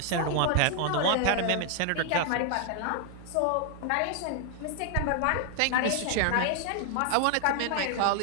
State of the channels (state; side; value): different; both; correlation 0.00